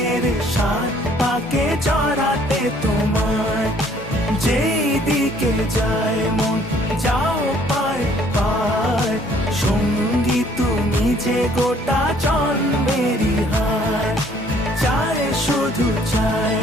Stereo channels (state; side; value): normal; both; correlation 0.60